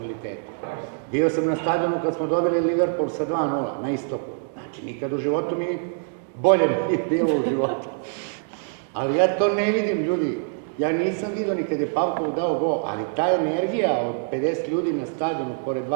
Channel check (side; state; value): left; silent; digital silence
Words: Bio sam na stadionu kad smo dobili Liverpool sa 2:0 na istoku. Znači, nikad u životu mi bolje nije bilo u životu. Ali ja to ne vidim, ljudi. Ja nisam vidio ni kad je Pavkov dao gol, ali ta energija od 50 ljudi na stadionu pored